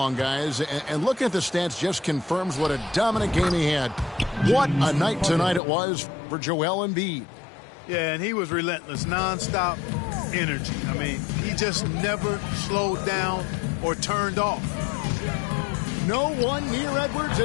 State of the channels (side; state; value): right; drops out; at 5.6 s